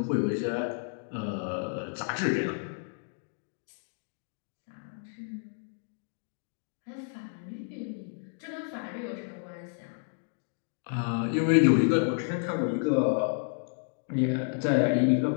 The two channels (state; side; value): silent; right; 57 dB below the other